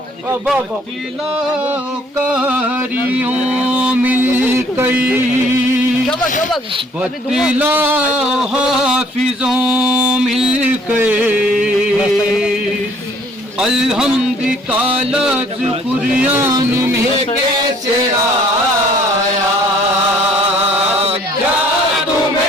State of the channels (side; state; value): both; normal; correlation 0.59